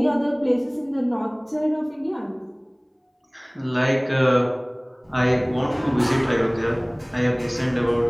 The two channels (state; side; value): identical; both; correlation 1.00